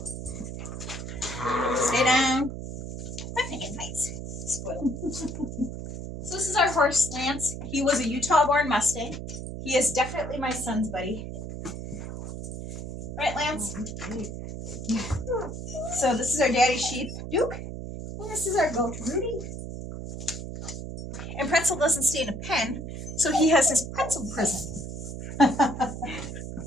Stay down. I'm making fights. Spoiled. So this is our horse, Lance. He was a Utah-born Mustang. He is definitely my son's buddy. Right, Lance? So this is our daddy sheep, Duke. And this is our goat, Rudy. And Pretzel doesn't stay in a pen, so he has his pretzel prison.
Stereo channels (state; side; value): noise; right; hum, 7 dB below the sound